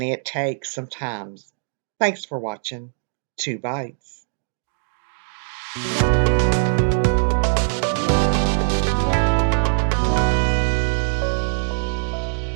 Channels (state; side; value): silent; left; digital silence